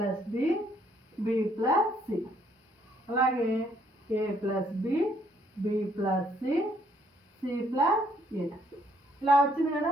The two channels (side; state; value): both; normal; correlation 0.67